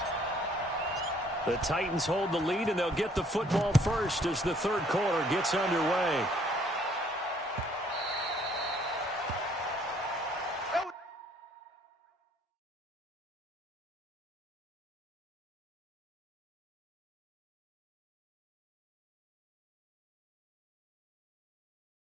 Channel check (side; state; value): both; normal; correlation 0.62